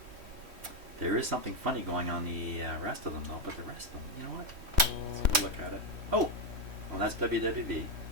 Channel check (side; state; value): left; late; 3.1 ms